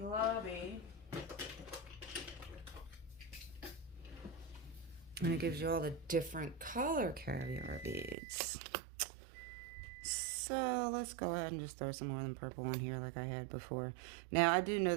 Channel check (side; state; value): left; drops out; at 8.2 s